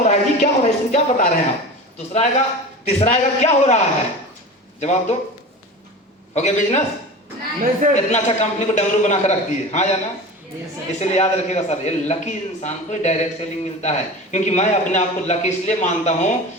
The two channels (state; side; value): normal; both; correlation 0.32